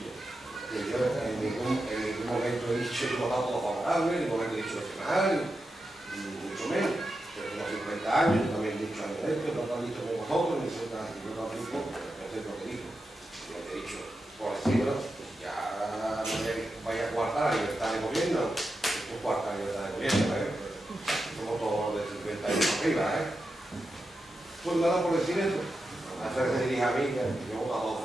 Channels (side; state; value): both; normal; correlation 0.89